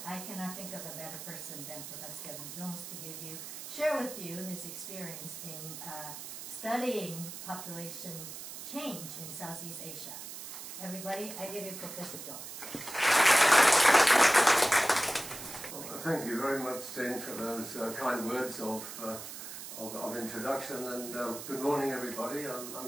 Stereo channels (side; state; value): right; noise; hiss, 10 dB below the sound